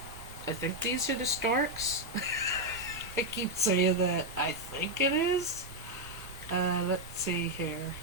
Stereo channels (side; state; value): both; normal; correlation 0.01